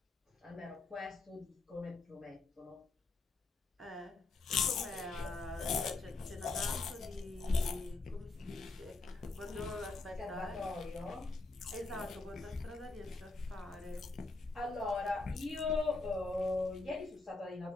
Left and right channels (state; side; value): quieter; right; 3.5 dB